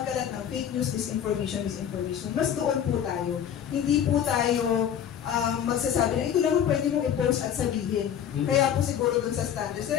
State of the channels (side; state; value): right; quieter; 9.2 dB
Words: ng fake news, misinformation. Mas doon po tayo. Hindi po tayo magsasabi na ito lang pwede mong i-post at sabihin. Kaya po siguro doon sa standards.